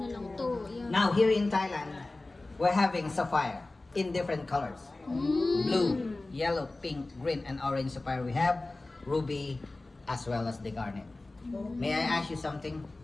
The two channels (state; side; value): quieter; right; 3.0 dB